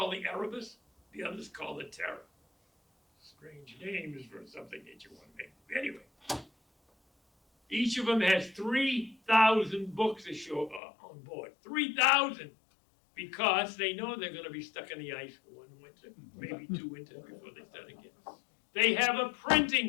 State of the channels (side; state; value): right; drops out; at 10.8 s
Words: the Erebus, the other's called the Terror. Strange names for something that you want to make. Anyway, each of them has 3,000 books on board. 3,000! Because they know they're going to be stuck in the ice for 1 winter, maybe 2 winters before they start again. They have a